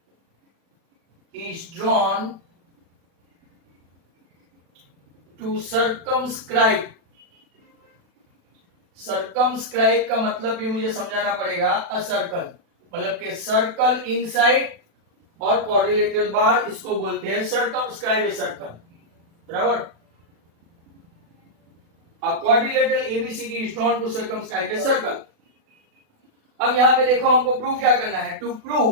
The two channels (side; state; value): left; late; 36 ms